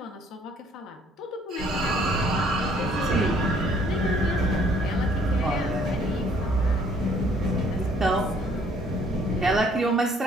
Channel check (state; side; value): normal; both; correlation 0.62